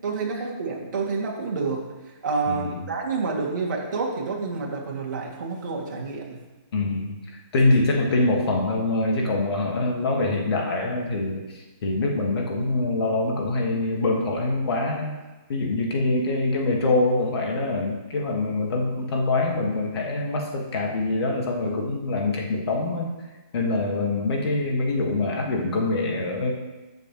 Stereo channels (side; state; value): both; inverted; correlation -0.57